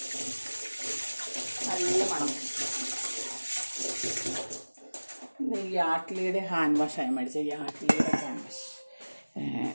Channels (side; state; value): both; inverted; correlation -1.00